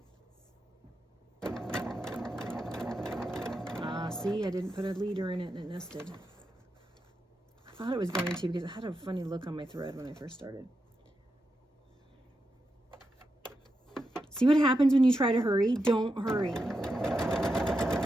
See, I didn't put a leader in it and it nested. I thought it was going to because it had a funny look on my thread when I first started. See what happens when you try to hurry? Don't hurry.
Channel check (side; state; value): both; normal; correlation 0.87